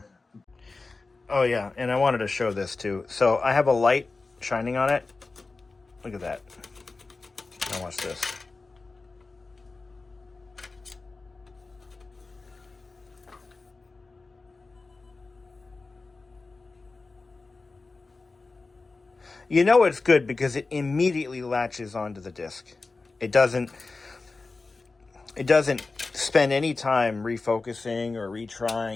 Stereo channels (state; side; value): quieter; right; 3.8 dB